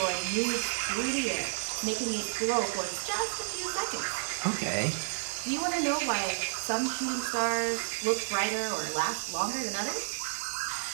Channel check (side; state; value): left; silent; 57 dB below the other